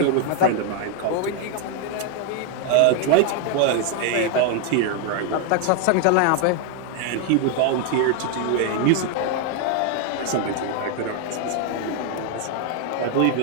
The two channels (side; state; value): both; different; correlation 0.01